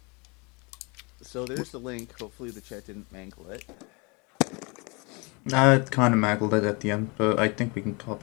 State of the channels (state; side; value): quieter; right; 29.5 dB